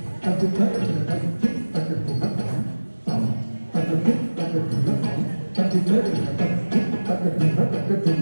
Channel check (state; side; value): inverted; both; correlation -1.00